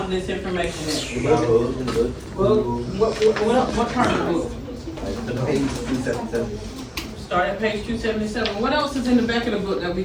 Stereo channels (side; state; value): both; identical; correlation 1.00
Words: this information at? Well, what part of the book? The page 277. Start at page 277. What else is in the back of the book that we